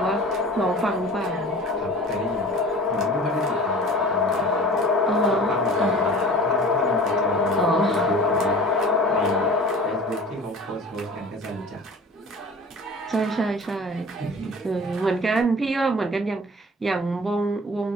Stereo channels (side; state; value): both; normal; correlation 0.43